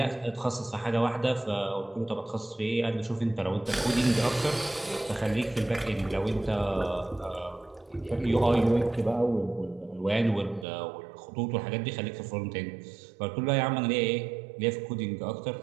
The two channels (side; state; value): left; drops out; at 10.7 s